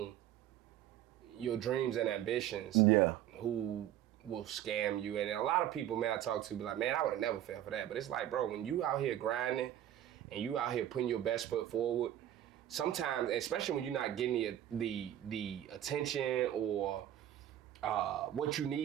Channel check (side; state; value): left; quieter; 11.7 dB